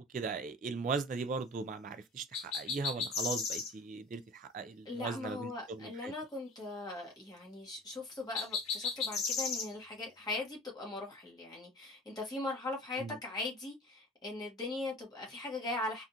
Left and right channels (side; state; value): both; normal; correlation 0.41